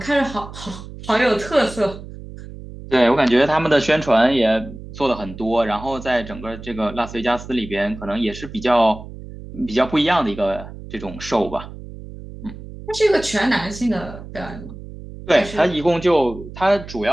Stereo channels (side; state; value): right; noise; hum, 14 dB below the sound